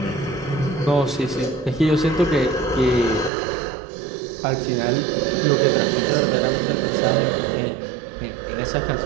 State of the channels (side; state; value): left; drops out; at 3.3 s